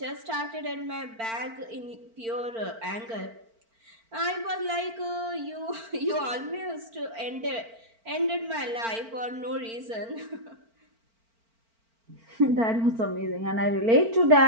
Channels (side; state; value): left; late; 4.4 ms